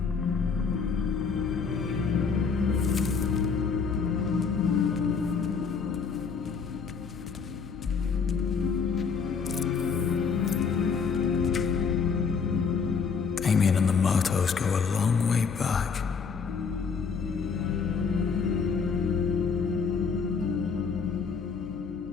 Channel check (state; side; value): quieter; right; 5.6 dB